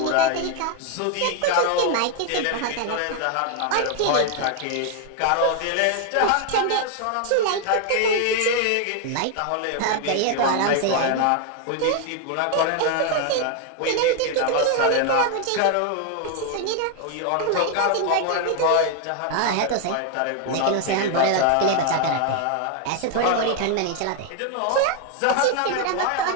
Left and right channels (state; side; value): different; both; correlation 0.00